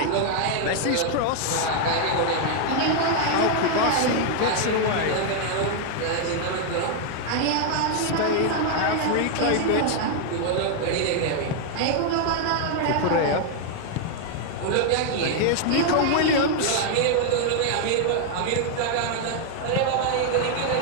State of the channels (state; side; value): different; both; correlation 0.00